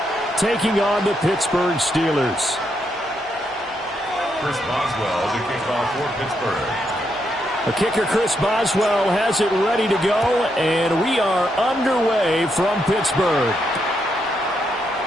taking on the Pittsburgh Steelers. Chris Boswell to kick off for Pittsburgh. The kicker, Chris Boswell, has it ready to go, and we are underway from Pittsburgh.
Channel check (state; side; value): noise; right; hum, 27 dB below the sound